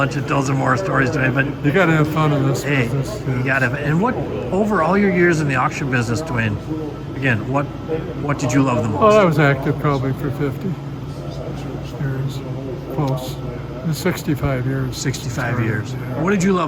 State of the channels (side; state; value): both; identical; correlation 1.00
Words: and tell some more stories today. But You got to have fun in this hey, business. you got to. And what over all your years in the auction business, Dwayne? Again, what did you love the Well, I most? was active probably for 50 years, close. 65 years. 65 years. Yeah. What did you